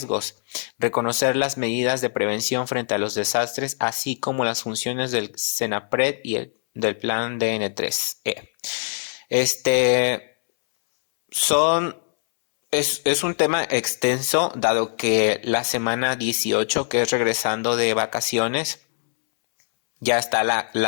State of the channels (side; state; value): right; silent; 64 dB below the other